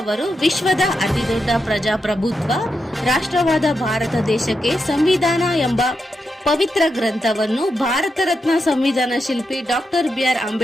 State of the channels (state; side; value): normal; both; correlation 0.86